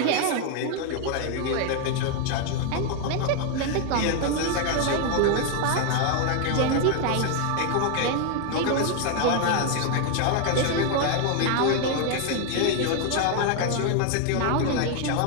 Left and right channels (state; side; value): different; both; correlation 0.01